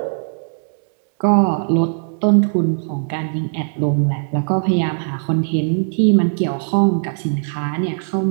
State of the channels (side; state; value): left; silent; digital silence